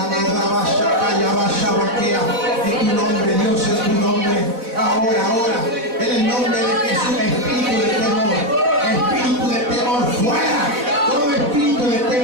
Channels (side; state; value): left; late; 4.1 ms